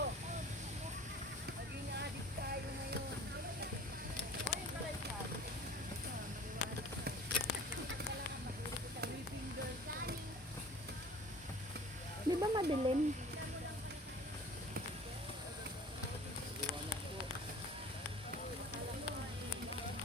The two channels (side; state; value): both; normal; correlation 0.44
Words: Di ba madilim?